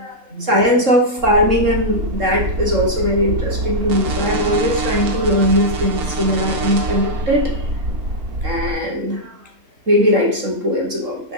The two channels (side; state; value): left; late; 3.7 ms